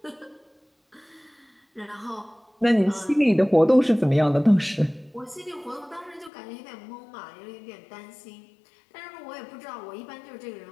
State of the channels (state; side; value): drops out; right; at 6.3 s